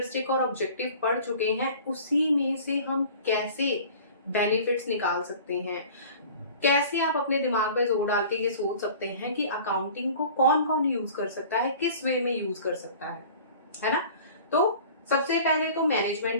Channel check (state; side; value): inverted; both; correlation -0.44